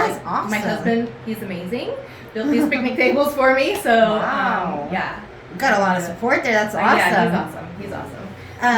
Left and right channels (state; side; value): identical; both; correlation 1.00